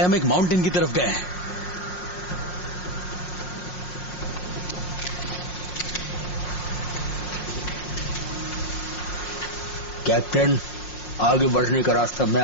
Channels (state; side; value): late; right; 5.6 ms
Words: माउंटेन की तरफ गए हैं। कैप्टन, आगे बढ़ने का रास्ता मैं